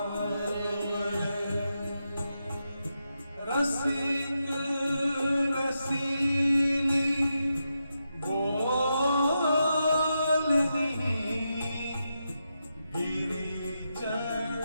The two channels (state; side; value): inverted; both; correlation -0.86